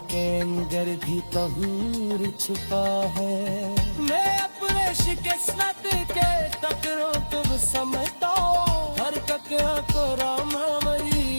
के अंदर भी तहूर छुपा है। मैं अपने शिकस्त के टकरों तुम समझता, हर ककरा को रामा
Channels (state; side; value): inverted; both; correlation -1.00